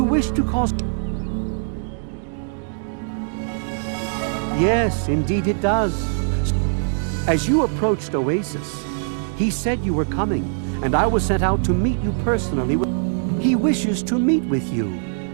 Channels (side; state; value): left; silent; digital silence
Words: wish to cause... Yes, indeed it does. As you approached Oasis, he said you were coming, and I was sent out to meet you personally. He wishes to meet with you.